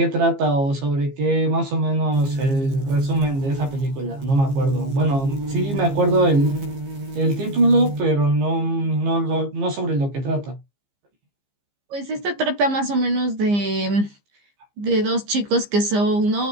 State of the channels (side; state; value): left; late; 15 ms